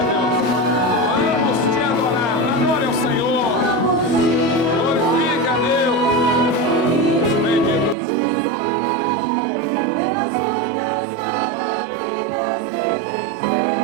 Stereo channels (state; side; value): drops out; left; at 8.0 s